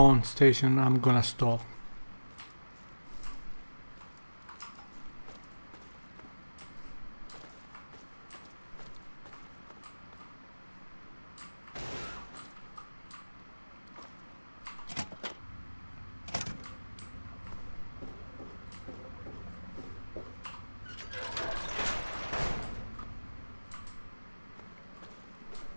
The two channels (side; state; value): both; inverted; correlation -1.00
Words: station, I'm gonna stop.